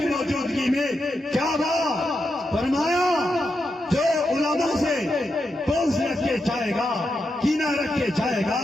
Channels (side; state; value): both; normal; correlation 0.85